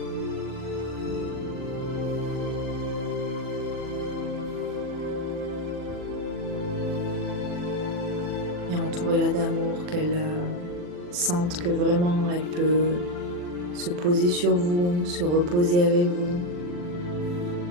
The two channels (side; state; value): left; late; 40 ms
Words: Et entourez-la d'amour, qu'elle sente que vraiment elle peut se poser sur vous, se reposer avec vous,